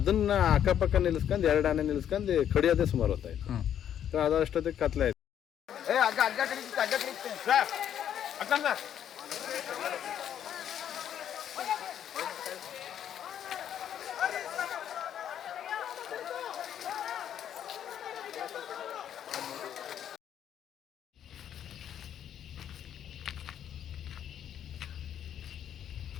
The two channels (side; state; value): right; quieter; 9.8 dB